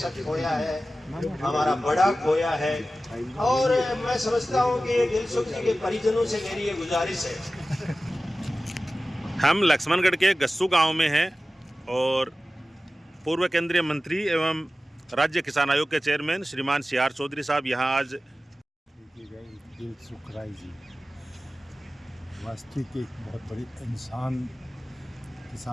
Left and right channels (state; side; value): normal; both; correlation 0.95